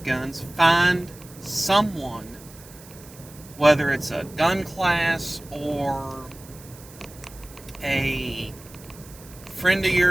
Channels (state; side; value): noise; right; hiss, 20 dB below the sound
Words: guns, find someone, whether it's a gun class or a friend of